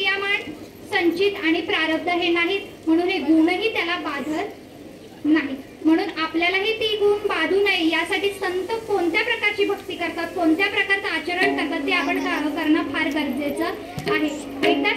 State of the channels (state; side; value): identical; both; correlation 1.00